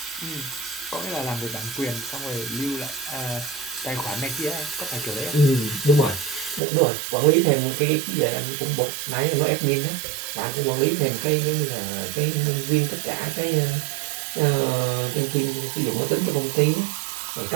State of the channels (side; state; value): left; drops out; at 6.6 s